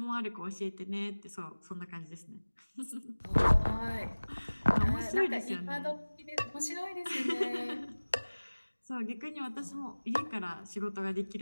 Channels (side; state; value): both; inverted; correlation -1.00